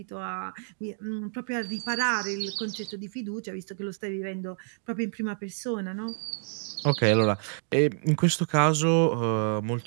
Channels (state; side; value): silent; left; digital silence